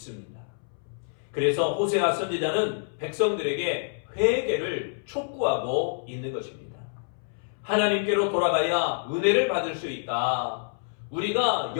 그래서 호세아 선지자는 백성들에게 회개를 촉구하고 있는 것입니다. 하나님께로 돌아가야 은혜를 받을 수 있다. 우리가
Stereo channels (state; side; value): silent; right; 60 dB below the other